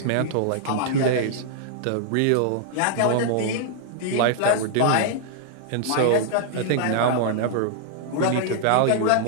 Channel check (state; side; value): different; both; correlation -0.01